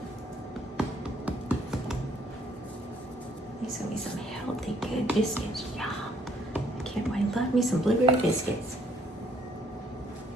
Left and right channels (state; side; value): normal; both; correlation 0.65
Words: These are gonna be some healthy, good biscuits. Yum. I can't wait. Love me some blueberry biscuits.